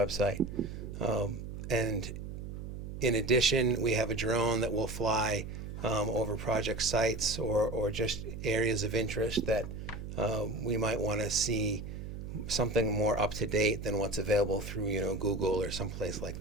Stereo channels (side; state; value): right; noise; hum, 8 dB below the sound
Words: And in addition, we have a drone that will fly over project sites or just areas of interest that we might want to see something more up to date than what's available through Google or someplace like